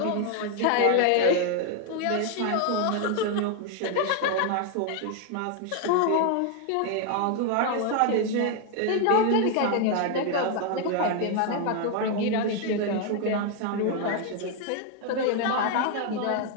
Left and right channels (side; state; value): both; different; correlation 0.00